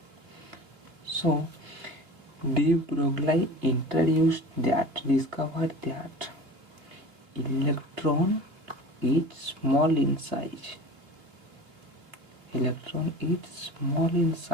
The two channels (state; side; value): late; left; 2.6 ms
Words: So, de Broglie discovered that electron is small in size.